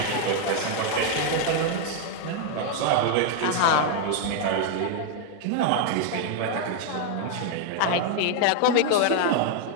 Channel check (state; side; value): different; both; correlation 0.00